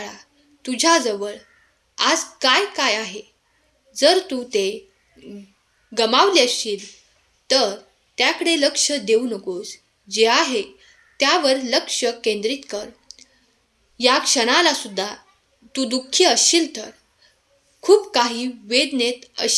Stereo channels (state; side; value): identical; both; correlation 1.00